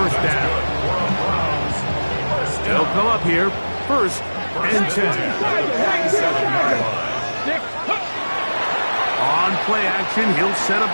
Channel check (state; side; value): inverted; both; correlation -1.00